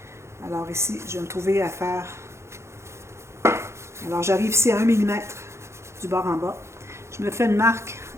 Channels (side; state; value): left; late; 0.13 ms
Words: Alors ici, je vais me trouver à faire... Alors j'arrive ici à 1 mm du bord en bas. Je me fais une marque